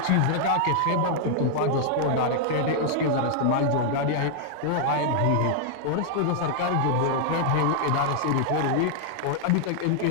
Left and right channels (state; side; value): different; both; correlation -0.01